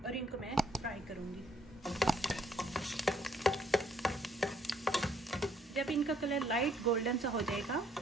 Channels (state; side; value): normal; both; correlation 0.66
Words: और इनको मैं फ्राई करूंगी। जब इनका कलर लाइट गोल्डन सा हो जाएगा